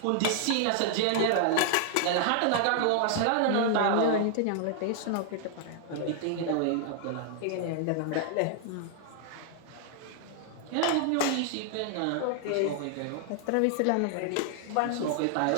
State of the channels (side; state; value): both; different; correlation 0.00